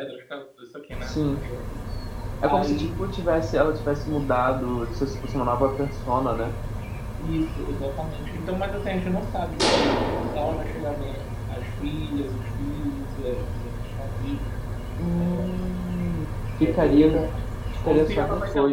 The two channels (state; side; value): identical; both; correlation 1.00